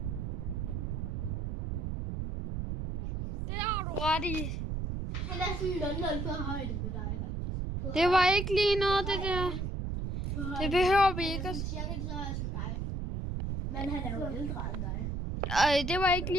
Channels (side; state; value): right; noise; rumble, 2 dB below the sound